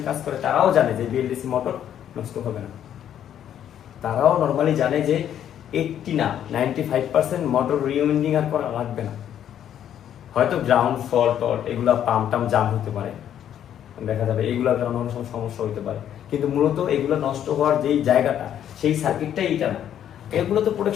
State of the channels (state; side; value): quieter; right; 10.1 dB